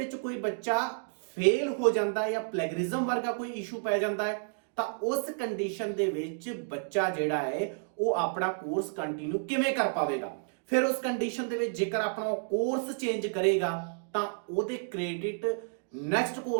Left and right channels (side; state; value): left; silent; digital silence